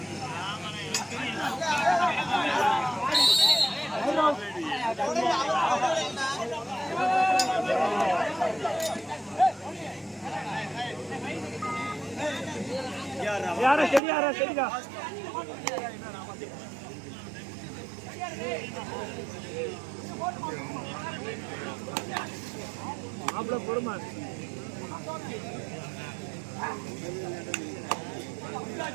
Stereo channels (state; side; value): drops out; left; at 14.0 s